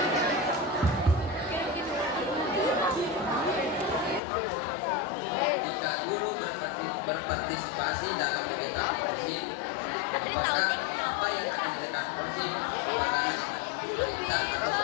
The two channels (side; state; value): right; drops out; at 4.2 s